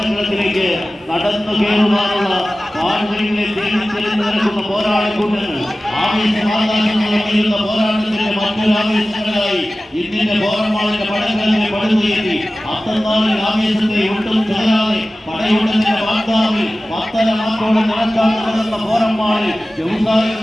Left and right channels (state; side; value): normal; both; correlation 0.96